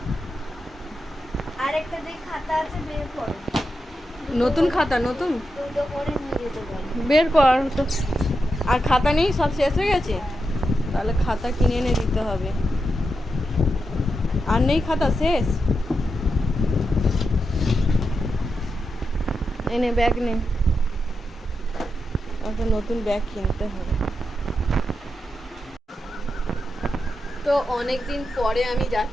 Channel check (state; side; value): normal; both; correlation 0.87